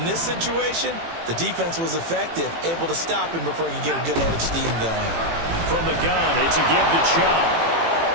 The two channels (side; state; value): left; late; 18 ms